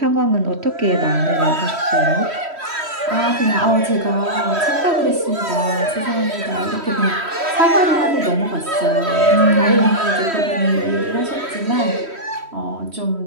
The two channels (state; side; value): late; left; 3.1 ms